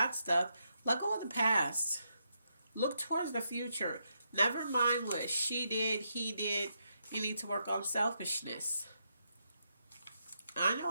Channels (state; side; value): inverted; both; correlation -0.81